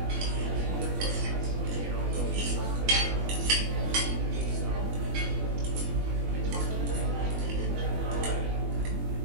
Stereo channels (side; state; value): left; late; 21 ms